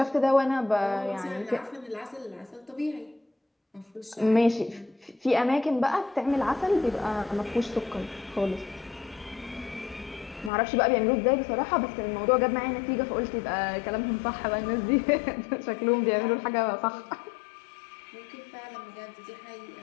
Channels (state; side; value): drops out; right; at 10.5 s